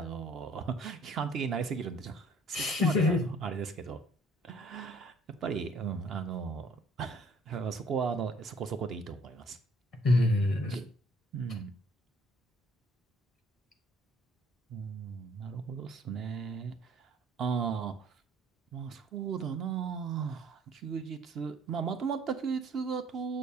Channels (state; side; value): normal; both; correlation 0.59